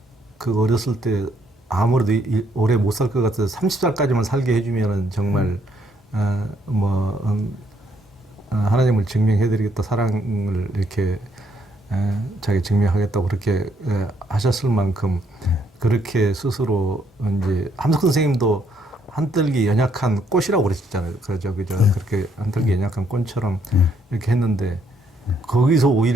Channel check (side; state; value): both; normal; correlation 0.71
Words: 그 어렸을 때 아무래도 오래 못 살 것 같아서 30살까지만 살게 해주면은 정말 하나님을 증명해드리겠다, 사랑을 이렇게 자기 증명하겠다고 그렇게 하셨을 만큼 그렇게 스스로 이제 함석 선생님도 한떨기 연약한 꽃이라고 그러셨잖아요. 그죠. 그렇게 한떨기 연약한 꽃처럼 이렇게 했는데 거기서